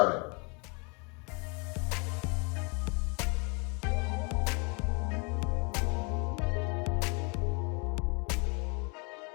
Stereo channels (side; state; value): right; quieter; 33.1 dB